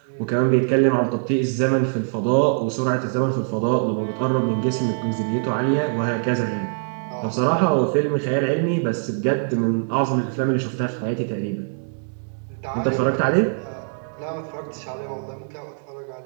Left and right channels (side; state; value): left; silent; 63 dB below the other